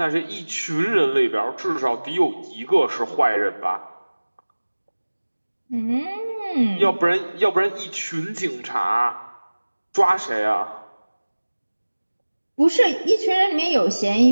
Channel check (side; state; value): both; inverted; correlation -1.00